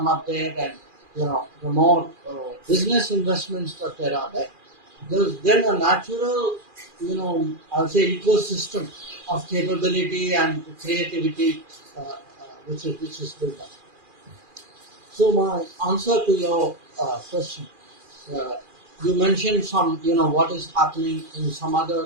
up there, and the more business investments that there are there, there's then a natural, I'll say ecosystem of capability and creativity which is built up. So my answer to your question, uh, you mentioned some, what is happening in some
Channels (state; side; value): late; left; 2.4 ms